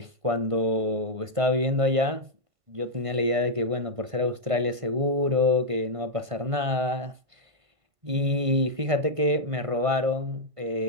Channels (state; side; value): late; left; 1.5 ms